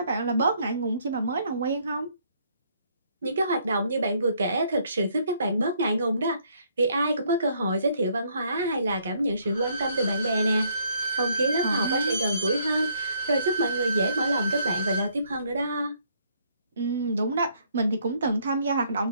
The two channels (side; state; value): both; inverted; correlation -0.67